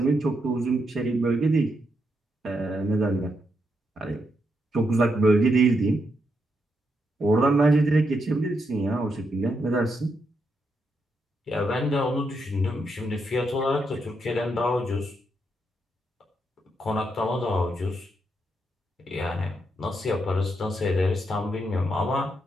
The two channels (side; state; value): both; normal; correlation 0.81